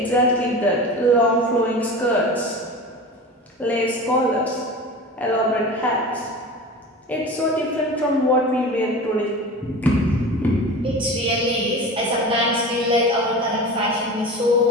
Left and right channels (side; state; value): both; normal; correlation 0.33